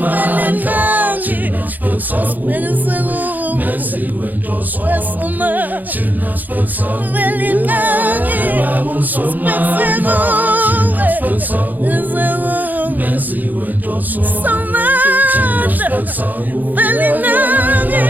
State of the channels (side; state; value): left; late; 0.084 ms